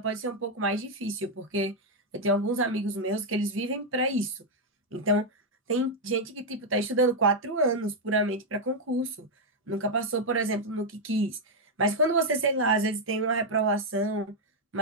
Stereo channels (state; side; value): normal; both; correlation 0.00